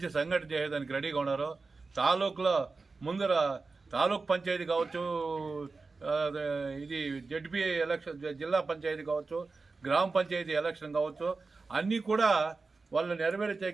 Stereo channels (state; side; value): quieter; left; 4.0 dB